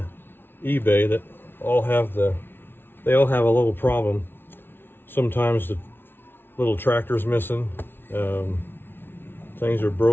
eBay that all have they all have a little problem. Sometimes the little tractor's missing. Things are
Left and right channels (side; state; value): right; late; 0.11 ms